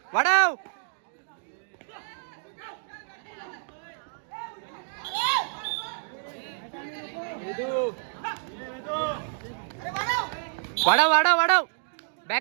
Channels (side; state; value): left; silent; digital silence